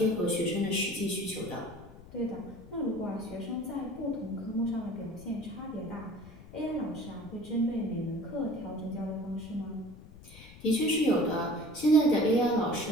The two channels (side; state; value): left; noise; rumble, 19 dB below the sound